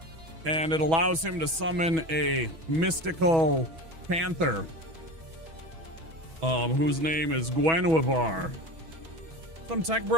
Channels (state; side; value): late; left; 6.2 ms